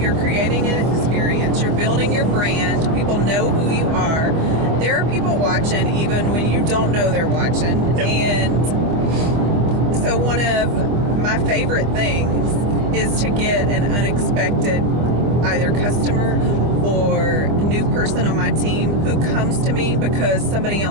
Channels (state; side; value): late; left; 25 ms